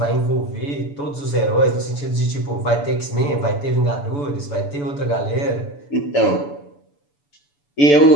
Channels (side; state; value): right; late; 7.0 ms